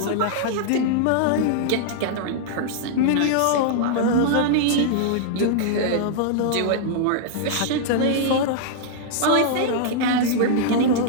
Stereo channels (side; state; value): both; different; correlation -0.01